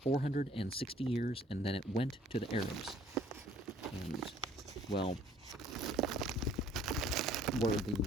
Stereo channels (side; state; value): both; normal; correlation 0.58